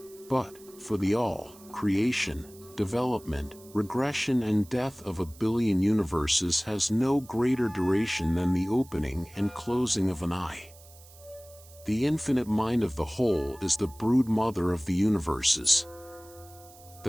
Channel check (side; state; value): right; noise; hiss, 23 dB below the sound